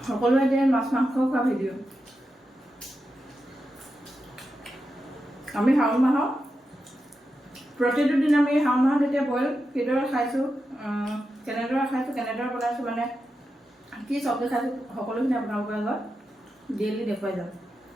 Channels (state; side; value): normal; both; correlation 0.89